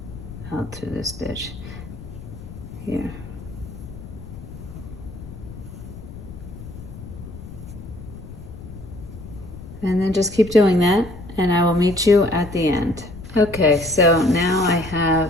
out through the stitch here. And then just keep doing that, and I will meet you at the end. Okay, so now I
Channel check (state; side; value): noise; left; rumble, 13 dB below the sound